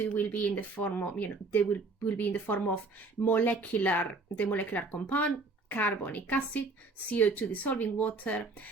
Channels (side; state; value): left; quieter; 3.6 dB